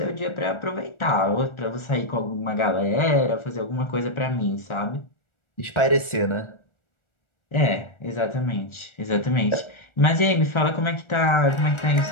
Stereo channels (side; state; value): right; late; 1.4 ms